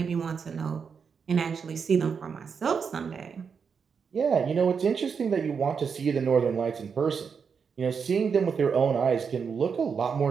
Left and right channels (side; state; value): left; quieter; 6.2 dB